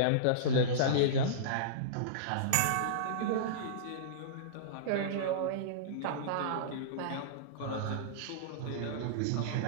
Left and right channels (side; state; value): both; different; correlation -0.04